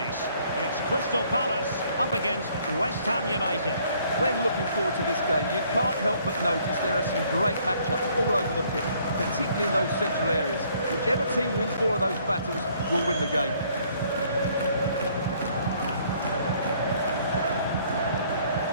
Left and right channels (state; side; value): inverted; both; correlation -0.63